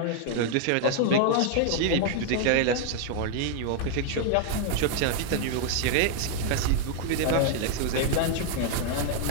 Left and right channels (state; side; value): different; both; correlation 0.00